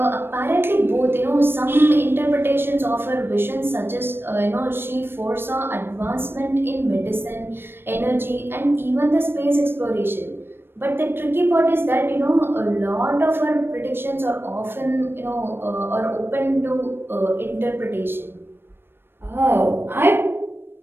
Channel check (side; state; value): left; late; 0.10 ms